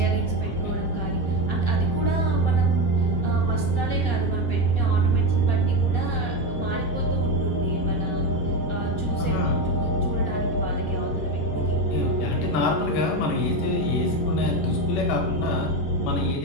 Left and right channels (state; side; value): late; right; 11 ms